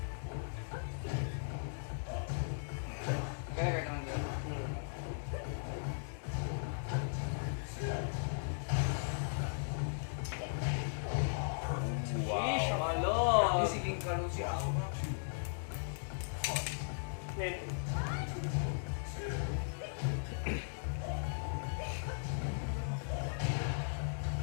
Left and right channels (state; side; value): silent; right; digital silence